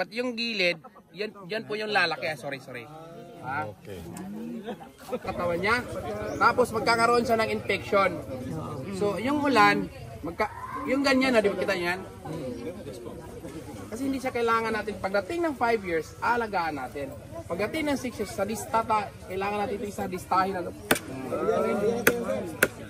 yung gilid, yan po yung lalaki. Sorry. Ha? Okay. Katawan niya. Tapos magkakaroon siya ng infection. So, yung ulan, yung ganyan na, di ba kita yan? Kasi hindi siya kailangan natin, pagdating ng 5 years, alagaan natin. Pagdating ng 6 years, sa distata, kailangan natin ito isa distahin na.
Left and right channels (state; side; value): identical; both; correlation 1.00